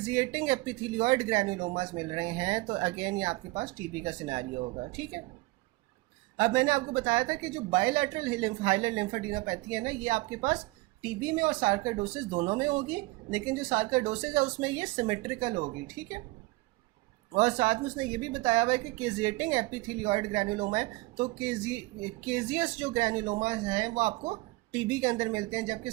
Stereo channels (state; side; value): quieter; left; 22.4 dB